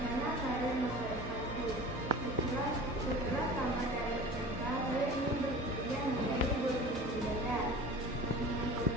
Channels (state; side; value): normal; both; correlation 0.39